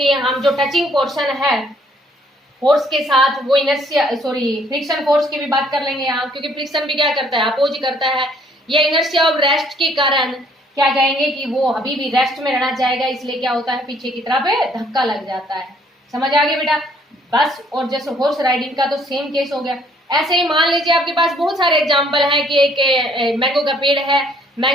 हम जो टचिंग पोर्शन है फोर्स के साथ, वो इनर्शिया फ्रिक्शन फोर्स की भी बात कर लेंगे यहाँ, क्योंकि फ्रिक्शन भी क्या करता है, अपोज करता है। ये इनर्शिया ऑफ रेस्ट के कारण क्या कहेंगे कि वो अभी भी रेस्ट में रहना चाहेगा, इसलिए क्या होता है, पीछे की तरफ धक्का लग जाता है। समझ आ गया बेटा। बस और जैसे हॉर्स राइडिंग का तो सेम केस हो गया। ऐसे ही मान लीजिए आपके पास बहुत सारे एग्जाम्पल है कि एक मैंगो का पेड़ है,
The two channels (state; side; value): normal; both; correlation 0.63